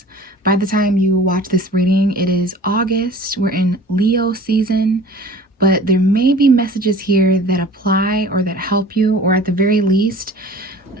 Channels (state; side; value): normal; both; correlation 0.44